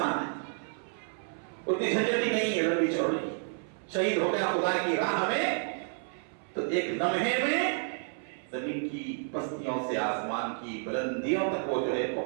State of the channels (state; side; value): silent; left; 57 dB below the other